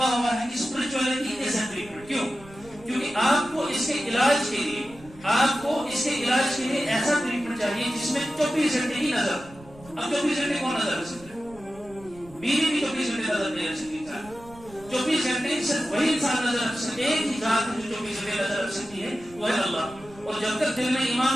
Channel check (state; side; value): noise; right; rumble, 21 dB below the sound